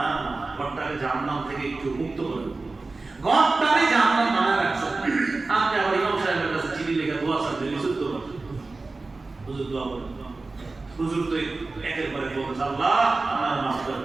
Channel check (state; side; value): quieter; left; 3.5 dB